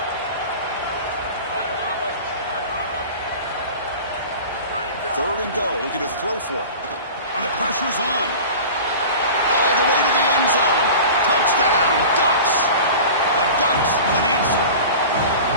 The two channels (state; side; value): inverted; both; correlation -0.36